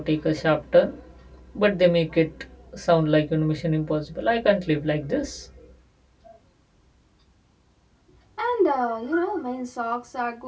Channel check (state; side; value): identical; both; correlation 1.00